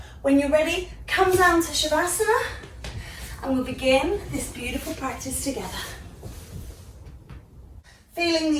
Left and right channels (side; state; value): both; identical; correlation 1.00